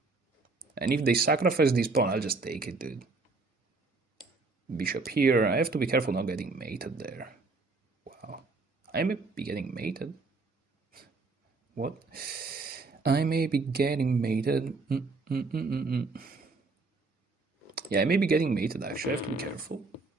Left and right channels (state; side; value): quieter; left; 3.8 dB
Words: And if they sacrifice this pawn, I'll just take it, dude. Bishop here. I have to be careful not getting mated there. Wow. I may be getting mated. What? I may be getting mated. Yeah, I may be getting mated, actually. I have to be careful.